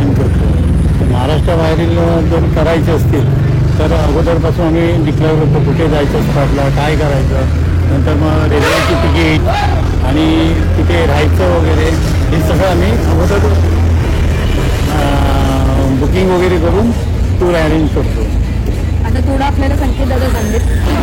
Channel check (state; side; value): identical; both; correlation 1.00